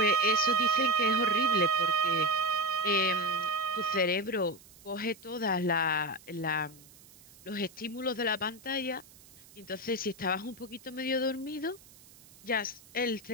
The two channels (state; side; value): noise; right; hiss, 23 dB below the sound